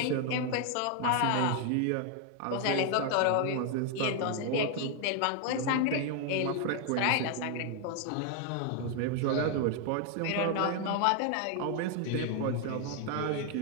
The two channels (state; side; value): different; both; correlation 0.00